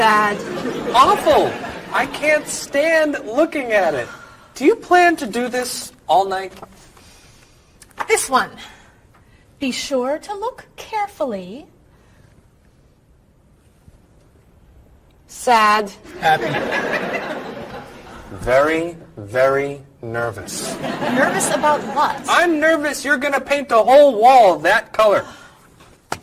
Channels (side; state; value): both; identical; correlation 1.00